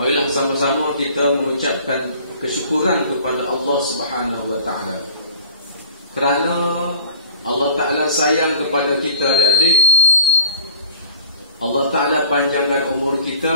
sama-sama kita mengucapkan kesyukuran kepada Allah Subhanahu wa taala. Kerana Allah Taala sayang kepada kita adik-adik. Allah Taala panjangkan umur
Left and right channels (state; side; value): inverted; both; correlation -0.48